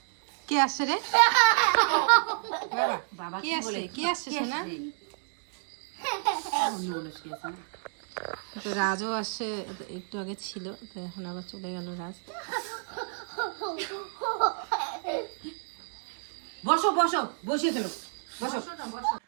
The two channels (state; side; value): silent; left; digital silence